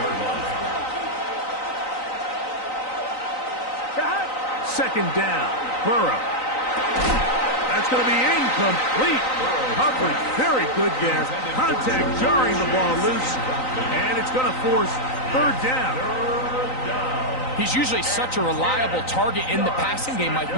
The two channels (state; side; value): late; right; 3.9 ms